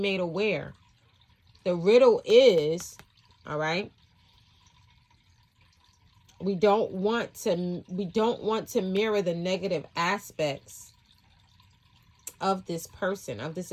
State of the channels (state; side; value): identical; both; correlation 1.00